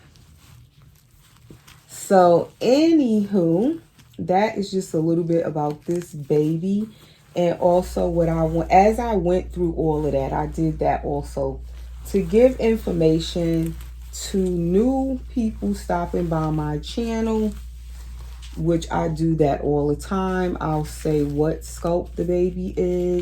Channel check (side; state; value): both; identical; correlation 1.00